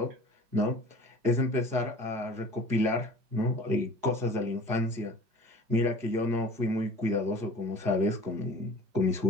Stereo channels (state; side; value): late; left; 4.8 ms